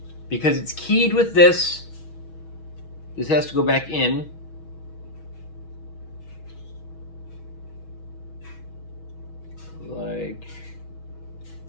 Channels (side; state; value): right; late; 6.2 ms